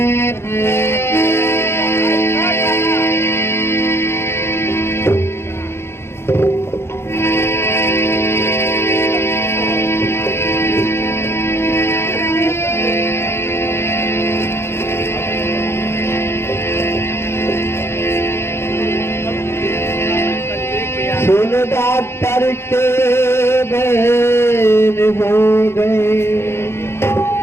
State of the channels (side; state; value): right; late; 0.12 ms